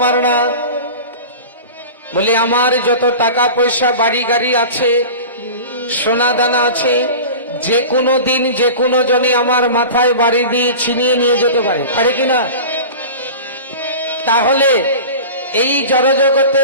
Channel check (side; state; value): both; inverted; correlation -0.34